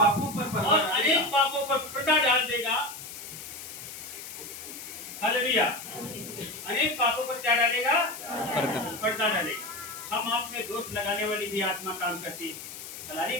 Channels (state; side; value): noise; left; hiss, 11 dB below the sound